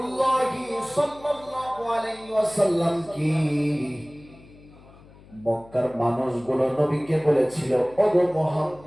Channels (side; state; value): left; noise; hum, 23 dB below the sound